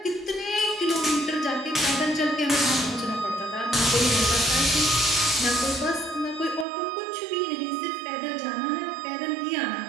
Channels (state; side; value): drops out; left; at 6.7 s